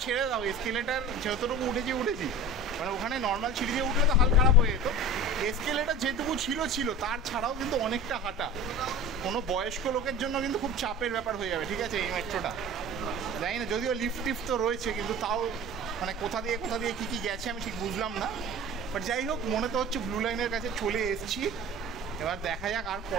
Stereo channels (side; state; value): both; normal; correlation 0.36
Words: ছেড়ে দাও, এসকেলেটার যতটুকু উঠেছি, মানে ওখানে নর্মাল সিঁড়ি দিয়ে উঠলে তো হাল খারাপ হয়ে যেত, এসকেলেটার যেটুকু ছিল তার ছাড়াও কিন্তু অনেকটা হাঁটা, কোনো বয়স্ক লোকের জন্য কিন্তু খুব চাপের ব্যাপার হয়ে যাবে, ঠিক আছে, এই মেট্রোটা। জানি না, যদিও লিফট তো রয়েছে, কিন্তু তাও মানে কোথা দিয়ে কী গেছে আমি ঠিক বুঝলাম না। বাট যাই হোক, মনে তো হচ্ছে ব্লু লাইনের কাছে চলে এসেছি। এবার দেখা যাক আর